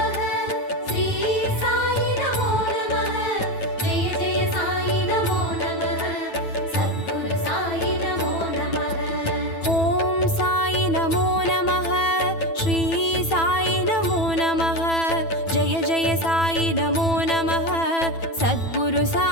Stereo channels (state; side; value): late; right; 9.1 ms